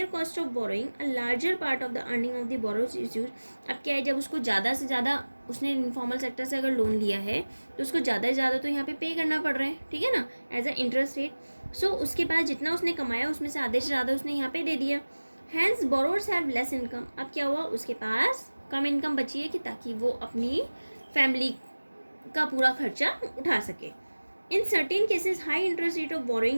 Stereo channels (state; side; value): inverted; both; correlation -1.00